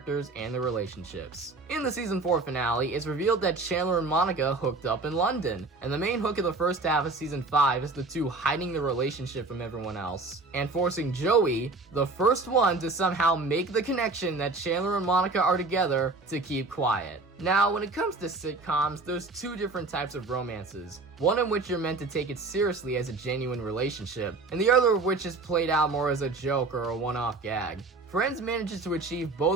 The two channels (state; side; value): quieter; left; 3.6 dB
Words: and their relationships. In the season 4 finale, it's revealed that Chandler and Monica hooked up in London, and the main hook of the first half of season 5 is the two hiding their relationship from everyone else, and forcing Joey, the first one to somehow make the connection that Chandler and Monica are together, to keep quiet. Now, when it comes to sitcoms, there's two different types of romances. One in which you're meant to take it seriously as a genuine relationship, and the other of which is played out more as a joke or a one-off gag. Friends manages to achieve